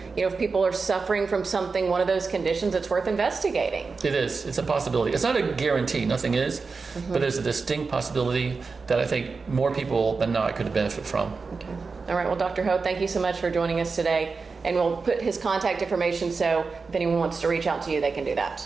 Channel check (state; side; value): quieter; left; 4.5 dB